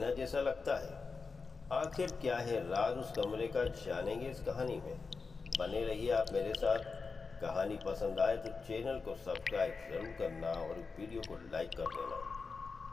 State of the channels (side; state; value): right; quieter; 4.6 dB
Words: जैसा लगता है। आखिर क्या है राज उस कमरे का, जानेंगे इस कहानी में। बने रहिए आप मेरे साथ। कहानी पसंद आए तो चैनल को सब्सक्राइब ज़रूर करना और वीडियो को लाइक कर देना।